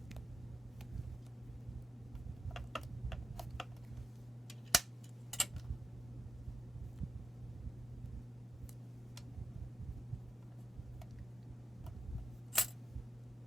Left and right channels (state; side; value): normal; both; correlation 0.90